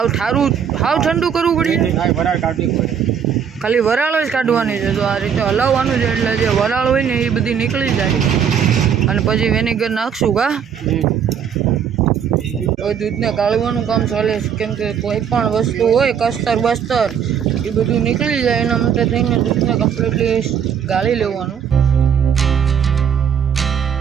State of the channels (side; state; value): left; quieter; 7.9 dB